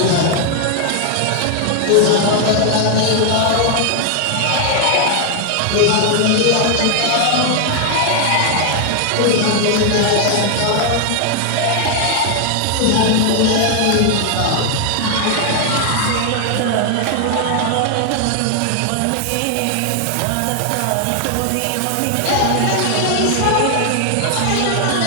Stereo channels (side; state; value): both; different; correlation 0.00